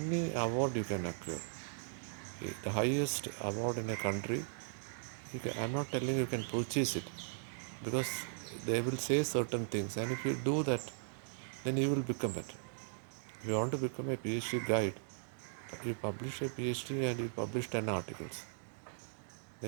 award you can acquire. The highest award in a country, I'm not telling you can purchase it because they will say certain things and if you do that, then you will become it. If you want to become a PhD guide, you publish a PhD and you publish 10 articles,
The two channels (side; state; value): left; silent; digital silence